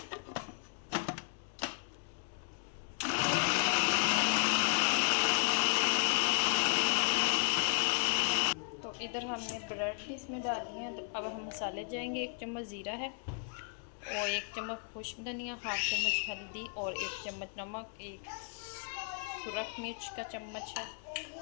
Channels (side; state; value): right; silent; 55 dB below the other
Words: तो इधर हमने ब्रेड भी इसमें डाली हैं। तो अब हम मसाले जाएंगे। 1 चम्मच ज़ीरा है और 1 चम्मच खुश्क धनिया, हाफ चम्मच हल्दी और 1 चम्मच नमक, 1 सुरख मिर्च का चम्मच है,